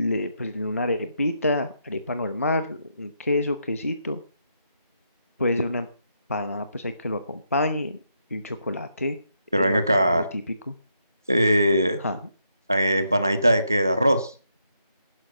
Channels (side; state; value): both; inverted; correlation -0.79